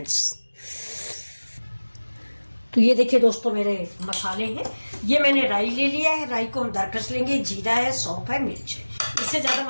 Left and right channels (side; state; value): both; inverted; correlation -1.00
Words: तो ये देखिए दोस्तों, मेरे मसाले हैं। ये मैंने राई ले लिया है। राई को हम दरकस लेंगे। जीरा है, सौंफ है, मिर्च है। इससे ज़्यादा